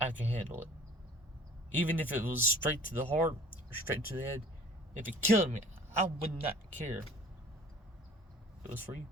I can handle it. Even if it was straight to the heart or straight to the head, if it killed me, I would not care. It was for you.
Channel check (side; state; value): both; normal; correlation 0.48